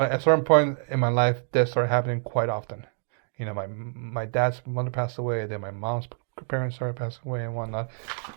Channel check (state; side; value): silent; left; 60 dB below the other